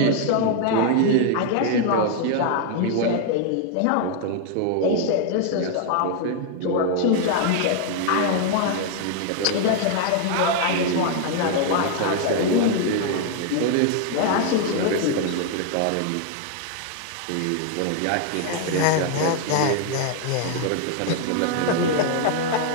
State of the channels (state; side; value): different; both; correlation 0.00